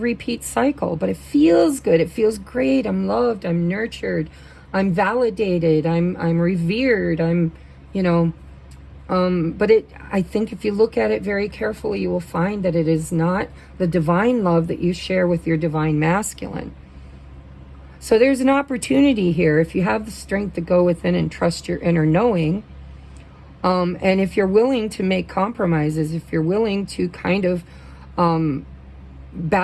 cycle, but it feels good. It feels great. I'm loved. I'm nurtured. I'm validated. I'm revered. But I think if you look at it very carefully, you will find that it is not the divine love that you share with your divine masculine. So there's an opportunity here. If you have the strength to go within and trust your inner knowing, and if you're willing to make compromises, if you're willing to kind of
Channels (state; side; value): identical; both; correlation 1.00